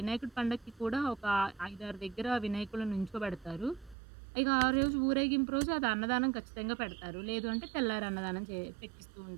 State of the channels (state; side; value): drops out; left; at 4.0 s